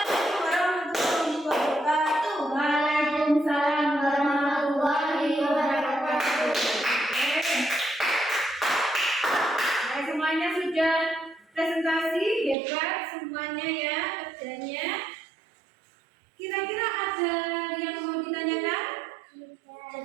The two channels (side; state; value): left; drops out; at 12.6 s